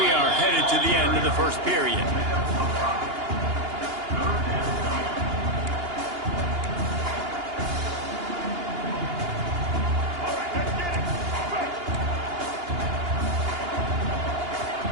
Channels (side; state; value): left; late; 2.8 ms